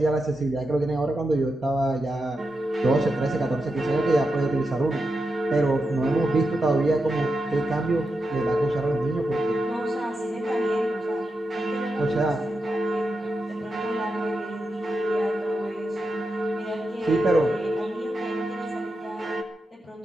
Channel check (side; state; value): both; normal; correlation 0.88